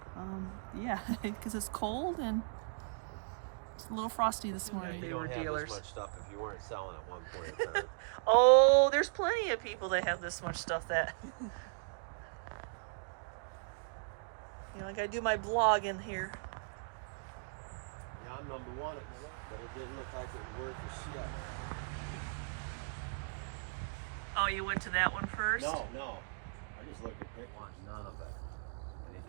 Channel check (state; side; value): silent; left; digital silence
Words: Yeah, because it's cold and it's a little frosty this morning. They were dealers. This much stuff if you weren't selling at one point in time. Oh, there's plenty of people that have this much stuff that you know, I gotta do my blog in here. Yeah, I'm number one, but it didn't look like it was worth a shit. Oh, you went to that one first? No. I just looked at Dick wants none of it. And he